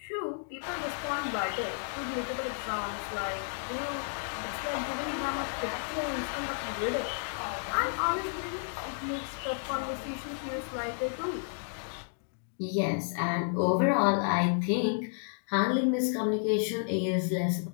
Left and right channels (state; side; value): silent; right; digital silence